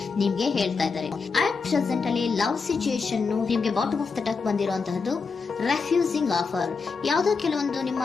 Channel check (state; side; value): quieter; right; 4.9 dB